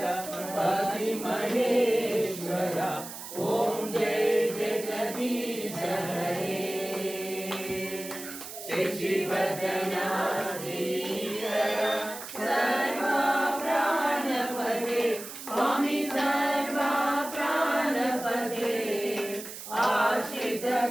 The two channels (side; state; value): right; noise; hiss, 11 dB below the sound